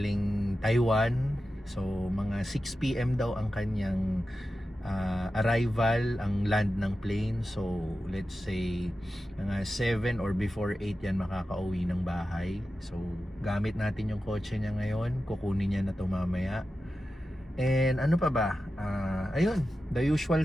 Taiwan. So, mga 6 PM daw ang kanyang arrival, ang land ng plane. So, let's say mga 7 or before 8 yan makakauwi ng bahay. So, gamit natin yung kotse niya ngayon. Kukunin niya na ito mamaya. And ano pa ba? Ayun, the usual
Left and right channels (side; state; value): both; normal; correlation 0.92